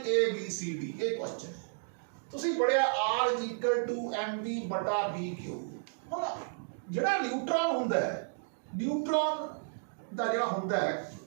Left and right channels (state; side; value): silent; left; digital silence